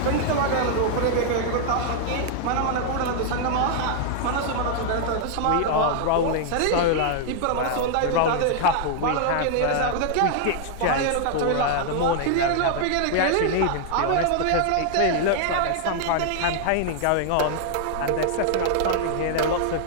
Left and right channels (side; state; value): both; different; correlation 0.00